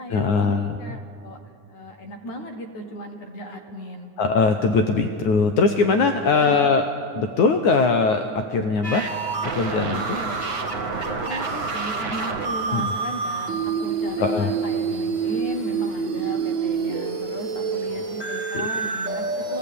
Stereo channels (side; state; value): right; late; 9.6 ms